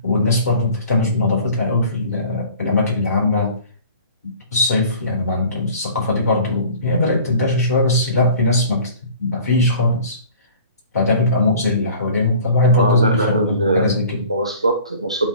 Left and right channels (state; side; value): inverted; both; correlation -0.47